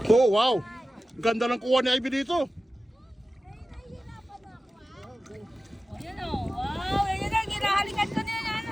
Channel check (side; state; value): both; normal; correlation 0.95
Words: Oh, wow! Ganda ng kuha ni Ivy dito.